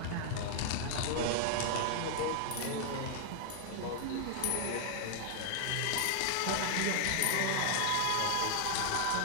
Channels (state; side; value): different; both; correlation 0.00